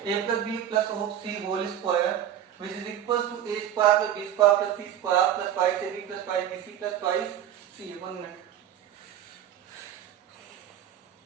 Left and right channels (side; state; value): left; quieter; 10.5 dB